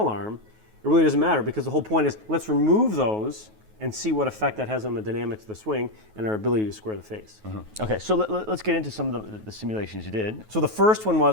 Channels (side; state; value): left; late; 9.3 ms